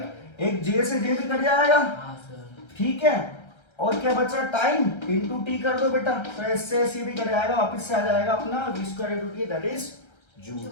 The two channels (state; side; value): late; right; 1.3 ms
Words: एक J से J भी कट जाएगा, ठीक है। और क्या बचा, टाइम इंटू टी कर दो बेटा, तो इससे सी भी कट जाएगा, वापिस से आ जाएगा अपना v square into T, that is